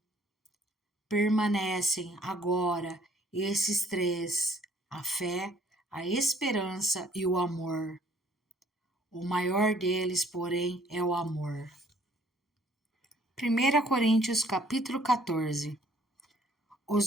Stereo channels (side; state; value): both; normal; correlation 0.60